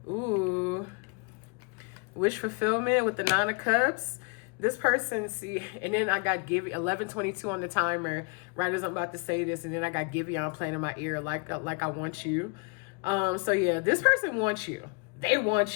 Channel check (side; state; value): right; quieter; 33.3 dB